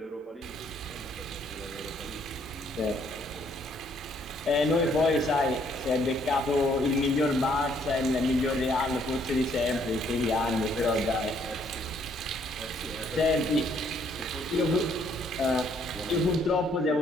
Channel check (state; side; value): normal; both; correlation 0.67